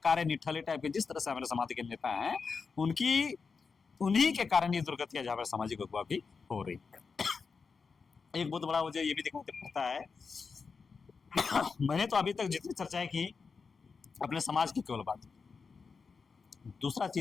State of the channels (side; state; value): right; quieter; 5.1 dB